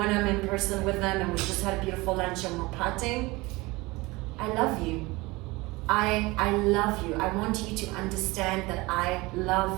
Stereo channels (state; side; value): quieter; left; 22.4 dB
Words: I'm in person with them, and we just had a beautiful lunch and we're partying, I love you. I love you. I want you to understand that I